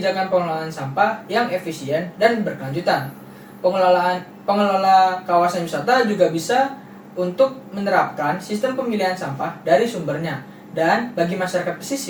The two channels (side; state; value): both; identical; correlation 1.00